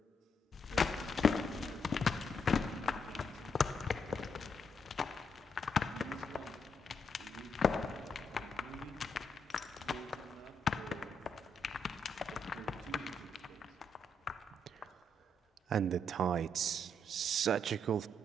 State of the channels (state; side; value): normal; both; correlation 0.77